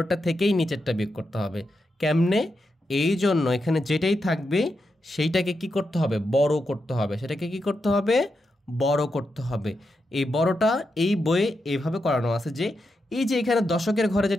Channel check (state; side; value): normal; both; correlation 0.86